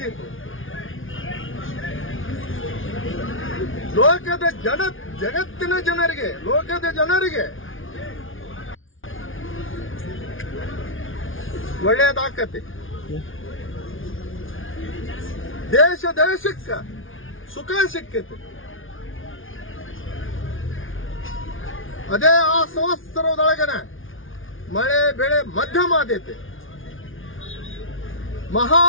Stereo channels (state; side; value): late; right; 0.58 ms